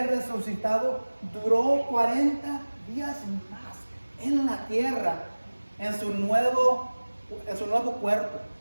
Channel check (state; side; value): inverted; both; correlation -1.00